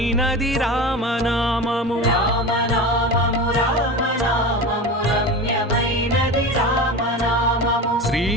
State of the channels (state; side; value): normal; both; correlation 0.28